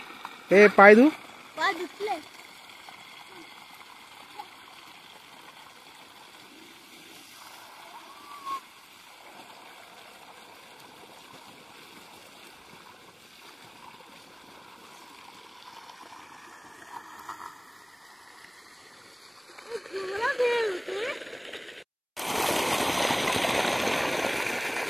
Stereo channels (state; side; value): identical; both; correlation 1.00